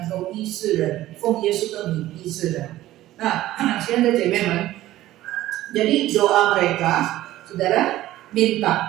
够医治人，奉耶稣的名医治人。Nah,现在姐妹们，jadi doa mereka, saudara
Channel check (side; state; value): left; quieter; 15.1 dB